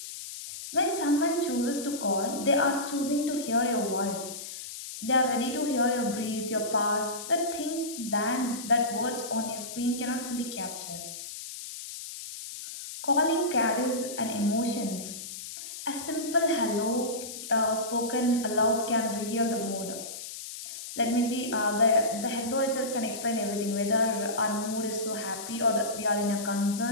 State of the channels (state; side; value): noise; left; hiss, 10 dB below the sound